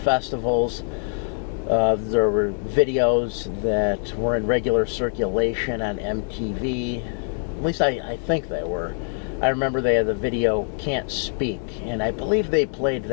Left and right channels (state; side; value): silent; right; 58 dB below the other